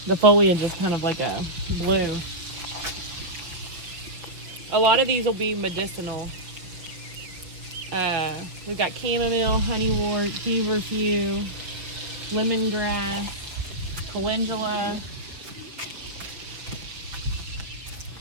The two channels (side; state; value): left; late; 5.9 ms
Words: The foliage is kind of like a blue. A lot of these will be medicinal. We've got chamomile, honeywort, feverfew, lemongrass, calendula.